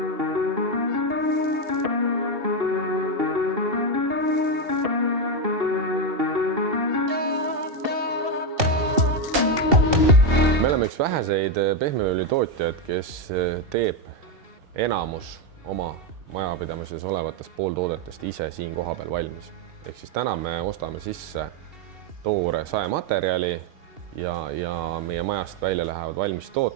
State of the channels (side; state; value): left; late; 2.7 ms